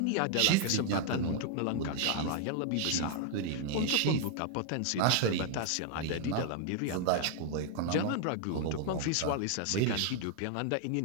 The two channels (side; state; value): both; different; correlation 0.00